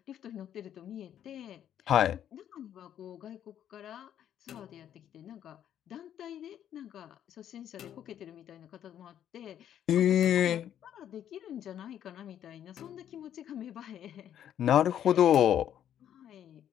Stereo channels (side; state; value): right; quieter; 10.2 dB